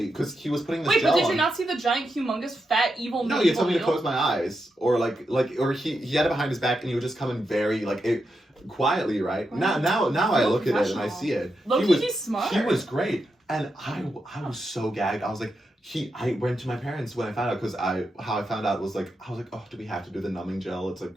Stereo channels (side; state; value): both; normal; correlation 0.86